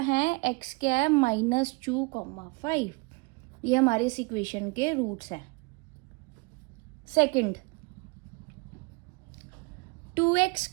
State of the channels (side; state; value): left; quieter; 28.6 dB